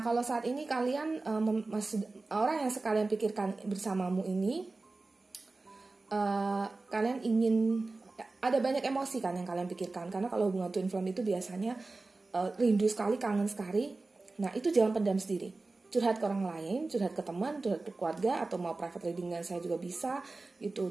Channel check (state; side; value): quieter; left; 3.5 dB